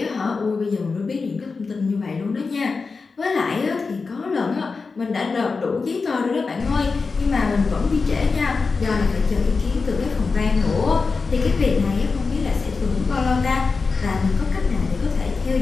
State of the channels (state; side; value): quieter; right; 4.5 dB